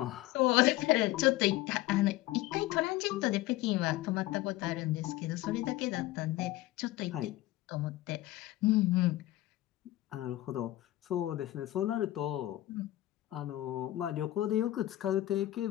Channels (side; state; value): right; quieter; 16.2 dB